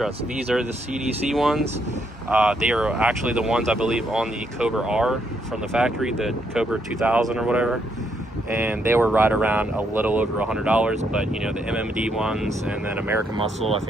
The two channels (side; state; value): both; normal; correlation 0.75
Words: These are the CDC ones. They are actually the ones, I believe, on the Cobra R from the factory, the Cobra 2000 or whatever. And they were right around a little over $100, but, you know, the MMD ones and then American Muscle, I